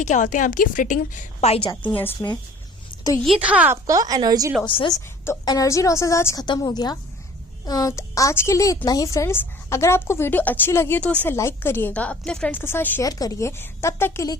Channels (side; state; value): both; normal; correlation 0.49